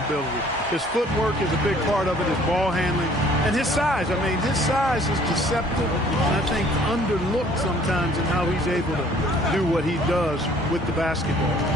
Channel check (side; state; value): both; normal; correlation 0.56